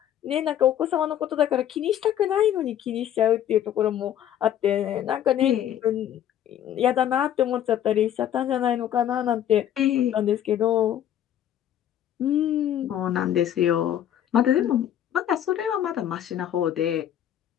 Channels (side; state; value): right; quieter; 10.7 dB